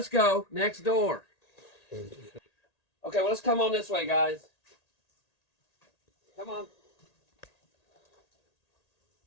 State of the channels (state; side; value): late; right; 1.8 ms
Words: go next door. Okay, well, let's come on this way, guys. Come on.